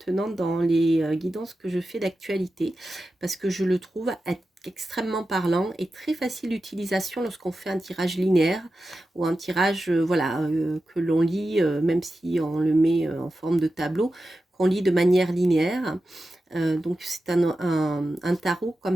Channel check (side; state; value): both; normal; correlation 0.92